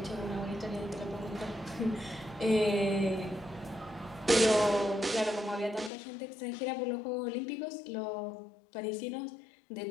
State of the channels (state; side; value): drops out; right; at 5.9 s